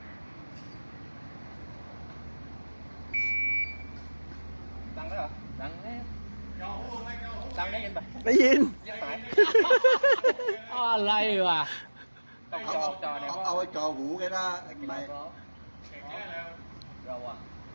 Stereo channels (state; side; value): inverted; both; correlation -1.00